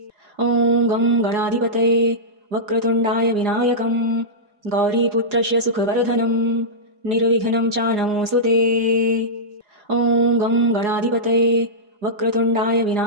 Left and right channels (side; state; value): left; late; 4.8 ms